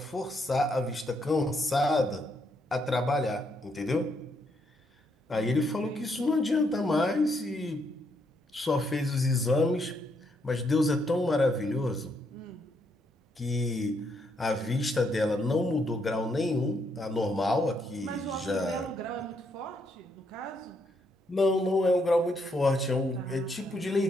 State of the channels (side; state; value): both; normal; correlation 0.75